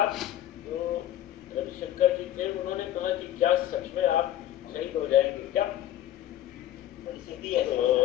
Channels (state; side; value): quieter; right; 12.5 dB